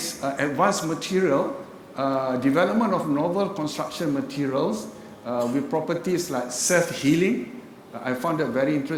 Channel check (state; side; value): identical; both; correlation 1.00